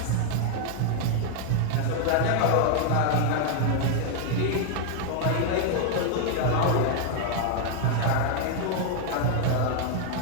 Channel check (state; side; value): different; both; correlation 0.00